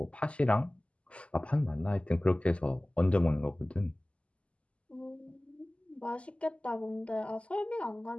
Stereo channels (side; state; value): right; late; 0.059 ms